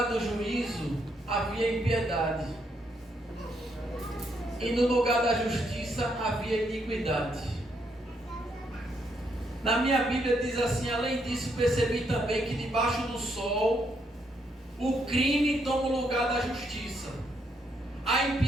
do juízo havia impiedade, e no lugar da justiça havia iniquidade. Na minha Bíblia diz assim: além disso percebi também que debaixo do sol o crime toma o lugar da justiça, a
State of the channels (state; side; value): normal; both; correlation 0.75